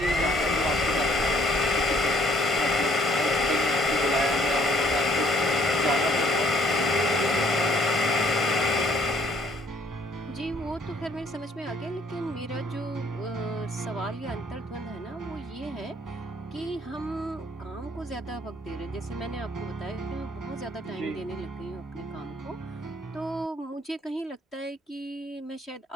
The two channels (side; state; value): both; normal; correlation 0.62